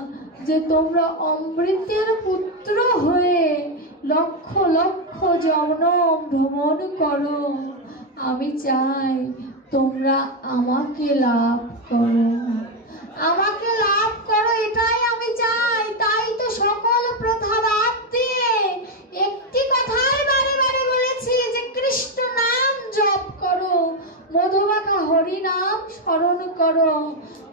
যে তোমরা অমৃতের পুত্র হয়ে লক্ষ লক্ষ জনম ভ্রমণ করো, আমি চাই তোমরা আমাকে লাভ করো, আমাকে লাভ করো, এটাই আমি চাই। তাই তো সকল প্রথা বাদ দিয়ে একটি কথাই বারে বারে বলেছি যে কৃষ্ণ নাম জপ করো, মধুমাখা হরি নাম স্মরণ করো,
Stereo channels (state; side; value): normal; both; correlation 0.07